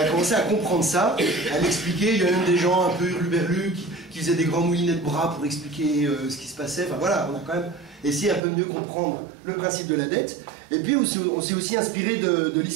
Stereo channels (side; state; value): left; drops out; at 8.4 s